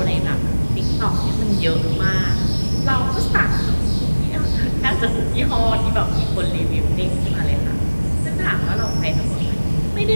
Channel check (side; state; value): both; inverted; correlation -1.00